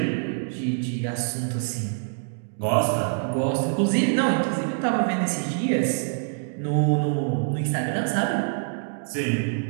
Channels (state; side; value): silent; left; digital silence